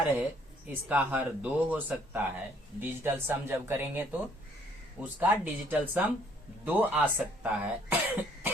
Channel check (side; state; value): both; normal; correlation 0.63